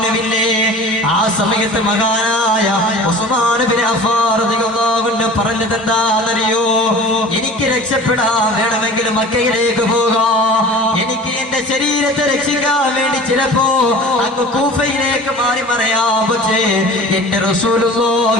ആ സമയത്ത് മഹാനായ ഉസ്മാൻ ഇബ്നു അഫ്ഫാൻ റളിയല്ലാഹു അൻഹു പറഞ്ഞത് എന്താണെന്നറിയോ? എനിക്ക് രക്ഷപ്പെടാൻ വേണമെങ്കിൽ മക്കയിലേക്ക് പോകാം, എനിക്ക് എന്റെ ശരീരത്തെ രക്ഷിക്കാൻ വേണ്ടി ചിലപ്പോ അങ്ങ് കൂഫയിലേക്ക് മാറി മറയാം. പക്ഷേ എന്റെ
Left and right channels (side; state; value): both; normal; correlation 0.40